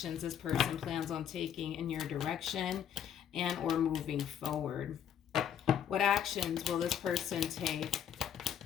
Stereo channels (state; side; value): quieter; right; 9.1 dB